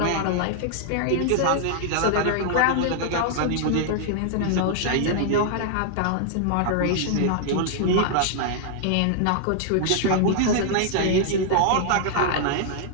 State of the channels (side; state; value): both; different; correlation -0.01